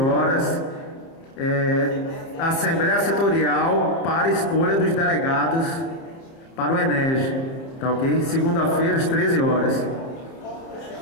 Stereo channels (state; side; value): late; right; 30 ms